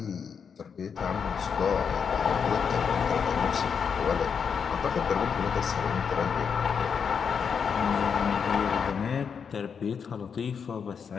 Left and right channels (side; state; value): right; quieter; 6.6 dB